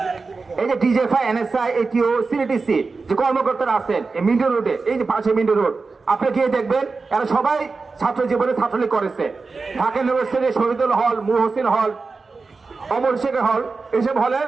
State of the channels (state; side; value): quieter; left; 4.2 dB